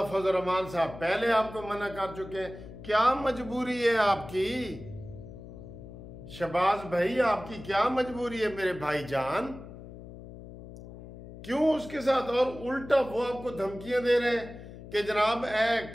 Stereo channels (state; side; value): noise; left; hum, 15 dB below the sound